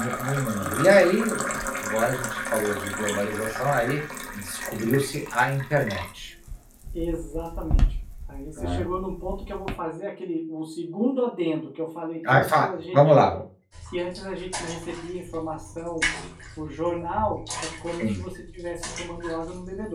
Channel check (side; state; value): both; identical; correlation 1.00